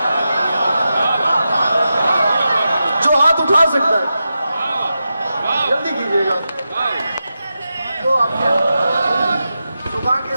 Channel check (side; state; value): both; inverted; correlation -0.90